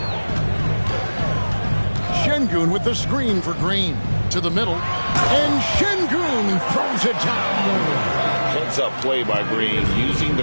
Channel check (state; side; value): inverted; both; correlation -1.00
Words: Şengün with the screen for Green. To the middle. And Şengün throws it down. Heads-up play by Green, using the